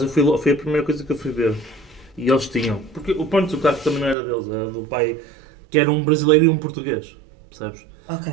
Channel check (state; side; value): drops out; left; at 4.2 s